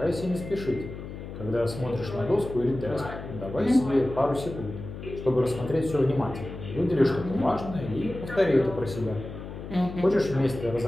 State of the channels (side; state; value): left; noise; hum, 10 dB below the sound